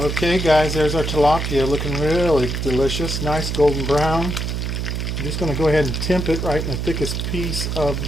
guys, there's our tilapia looking really delicious. Nice golden brown. I'm just going to go ahead and temp it right in the thickest piece of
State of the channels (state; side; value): noise; right; hum, 2 dB below the sound